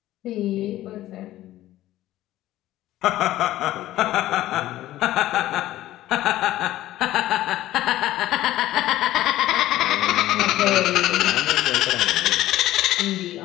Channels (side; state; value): right; quieter; 14.9 dB